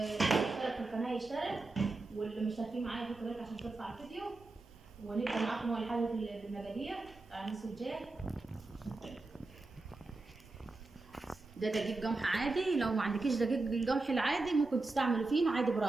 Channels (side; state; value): left; quieter; 3.3 dB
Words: اشترك في القناه يشترك، واللي مشتركين معايا يحطوا لايك عشان ترفع الفيديو. ونبدا معاكم اول حاجه في المقادير بتاع المسجات. ده دقيق قمح عادي، لو ما عندكيش دقيق القمح العادي ممكن تستعملي فينو عادي